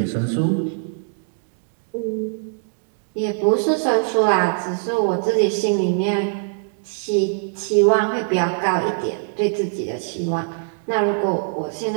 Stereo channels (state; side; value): silent; left; digital silence